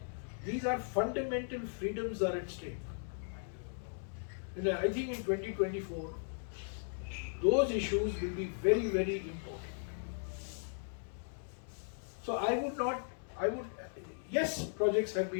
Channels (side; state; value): right; silent; digital silence